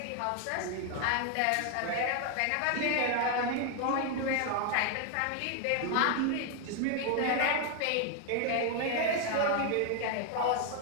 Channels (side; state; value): both; different; correlation 0.00